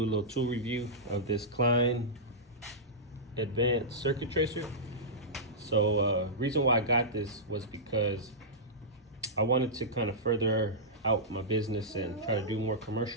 a little tool review of this Klein Advanced Circuit Tracer. So reason why I got this was because I wanted to kind of further out my business and try to do more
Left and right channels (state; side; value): normal; both; correlation -0.14